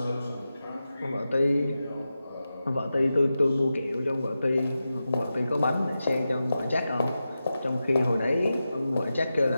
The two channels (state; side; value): inverted; both; correlation -0.92